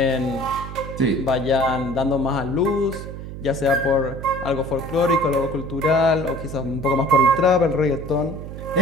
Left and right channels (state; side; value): noise; right; hum, 10 dB below the sound